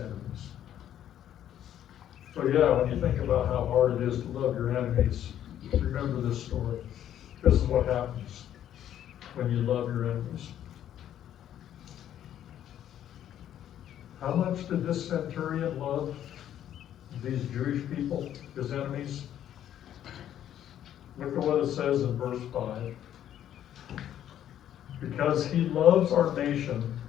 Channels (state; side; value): quieter; right; 10.9 dB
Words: So yeah, when you think about how hard it is to love your enemies, remember this story. This is what happens when you love your enemies. How much did this centurion love these Jewish people, his enemies? Look at what it says in verse 5. Because he loves our nation